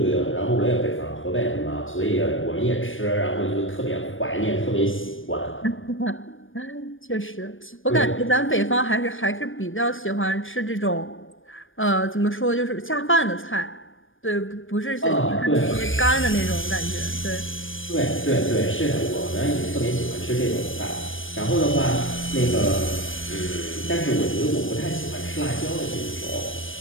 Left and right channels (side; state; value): right; late; 0.58 ms